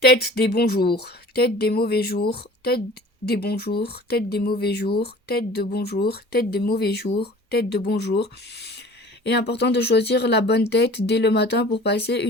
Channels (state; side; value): normal; both; correlation 0.45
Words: Tête des bons jours, tête des mauvais jours, tête des bons jours, tête des mauvais jours, tête de bons jours, tête des mauvais jours, tête de bons jours. Il est important de choisir la bonne tête dès le matin pour passer